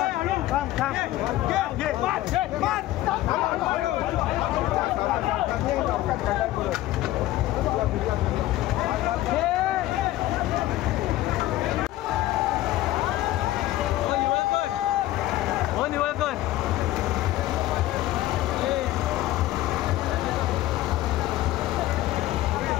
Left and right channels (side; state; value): right; quieter; 15.6 dB